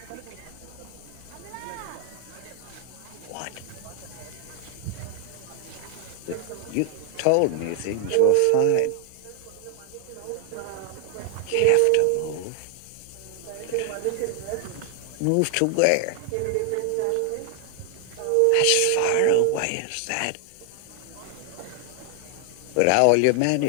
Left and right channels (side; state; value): both; different; correlation 0.00